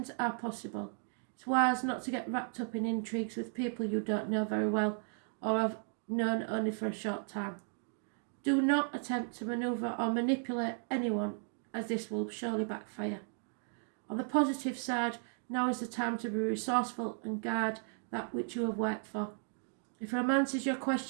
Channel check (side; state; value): left; silent; 54 dB below the other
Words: are possible. It's wise not to get wrapped up in intrigues with people you don't know very well or have known only for a short time. Do not attempt to manoeuvre or manipulate anyone, as this will surely backfire. On the positive side, now is the time to be resourceful and guard that which you have worked for. If romance is your